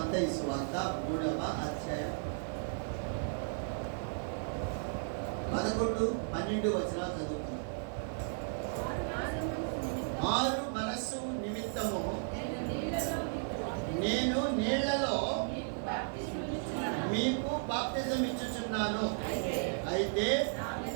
సువార్త 3వ అధ్యాయం 11, 12 వచనాలు చదువుతున్నాం. మారు మనస్సు నిమిత్తము నేను నీళ్లలో మీకు బాప్తిజం ఇచ్చుచున్నాను. అయితే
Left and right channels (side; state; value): left; silent; digital silence